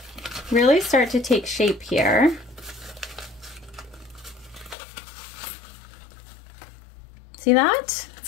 really start to take shape here. See that?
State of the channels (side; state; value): right; drops out; at 4.8 s